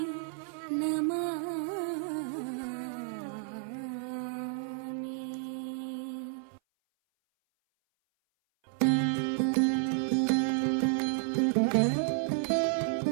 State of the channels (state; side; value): silent; left; 57 dB below the other